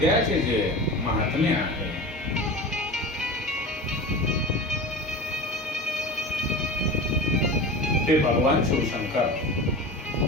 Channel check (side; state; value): both; normal; correlation 0.32